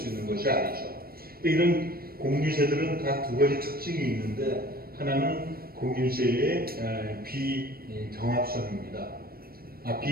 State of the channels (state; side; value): late; left; 0.44 ms